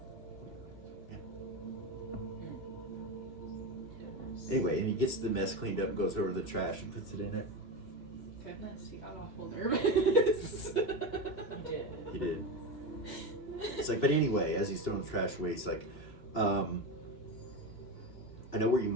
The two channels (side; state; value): right; late; 2.9 ms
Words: anyway, and he gets the mess cleaned up, goes over the trash, and puts it in it. Goodness, he got awful nervous. He did. It's like, but anyway, as he's throwing the trash away, he's like, I know where you